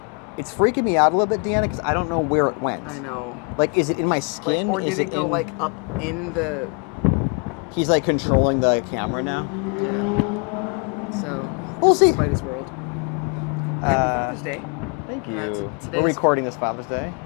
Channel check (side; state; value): right; quieter; 36.0 dB